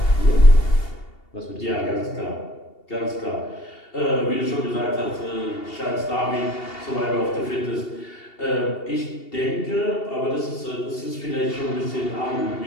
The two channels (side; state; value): right; late; 2.8 ms